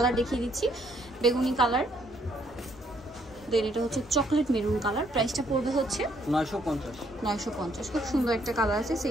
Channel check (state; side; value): normal; both; correlation 0.69